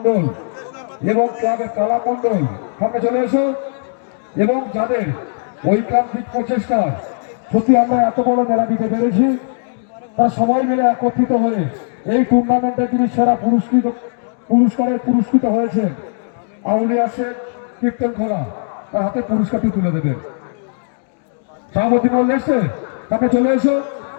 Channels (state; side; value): silent; right; digital silence